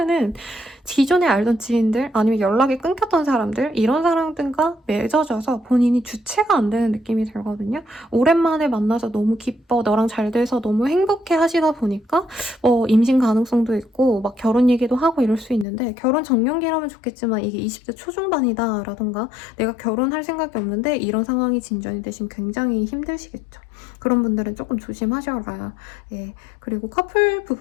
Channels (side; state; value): right; drops out; at 15.7 s